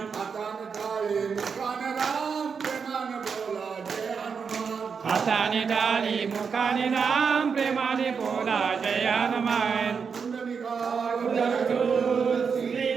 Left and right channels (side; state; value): left; quieter; 6.0 dB